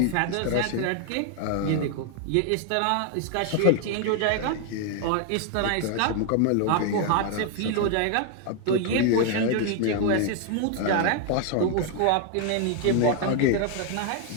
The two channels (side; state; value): both; different; correlation 0.00